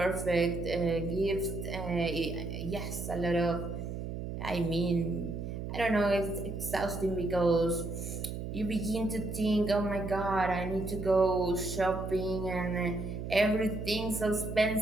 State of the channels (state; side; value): noise; right; hum, 6 dB below the sound